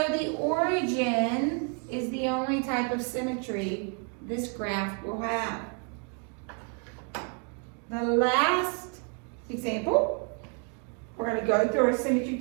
the origin is the only type of symmetry this graph will have. The last example, we're going to go through our symmetry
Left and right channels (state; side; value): quieter; left; 36.6 dB